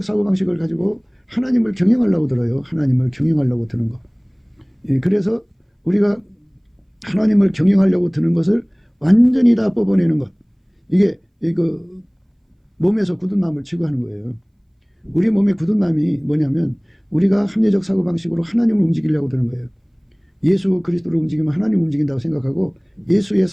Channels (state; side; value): identical; both; correlation 1.00